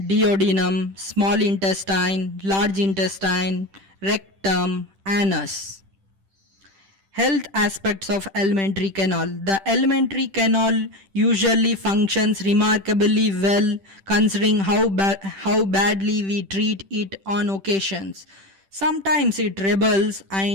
small intestine, large intestine, rectum, anus. Health aspects of alimentary canal. The alimentary canal usually functions remarkably well considering how badly we treat it on occasions. Sometimes it rebels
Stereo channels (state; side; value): late; left; 10 ms